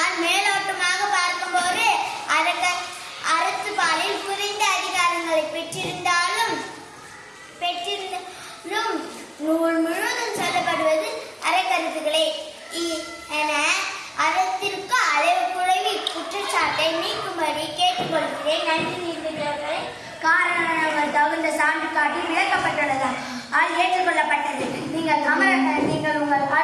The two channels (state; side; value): identical; both; correlation 1.00